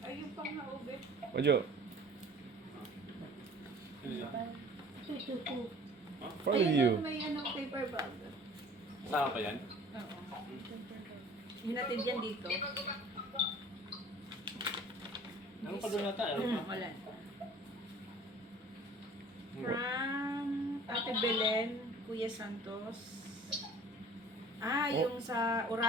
yung pang naube. Ojo. Ano yan? Ito. For Ayun, you. may ano, paper bag. Sama pa yan? Oo. Hinatid yan dito. Ano pa doon nata? Ano pa? Wala. From Ate Belen, Kuya Santos. Oh. Yung sa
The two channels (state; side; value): normal; both; correlation 0.48